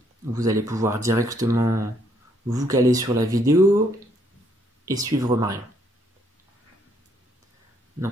Vous allez pouvoir directement vous caler sur la vidéo et suivre Marion.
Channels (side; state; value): both; normal; correlation 0.70